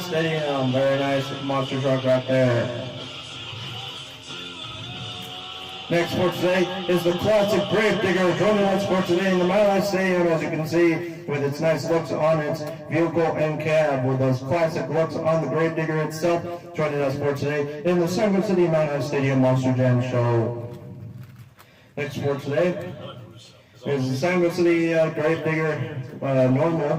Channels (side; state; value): both; identical; correlation 1.00